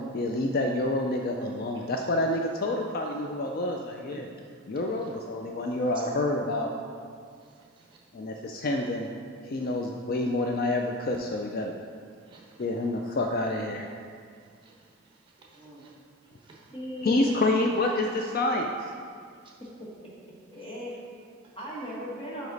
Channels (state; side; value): normal; both; correlation 0.27